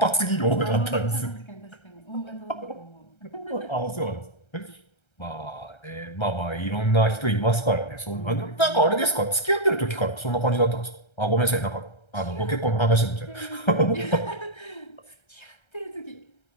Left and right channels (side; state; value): right; late; 1.3 ms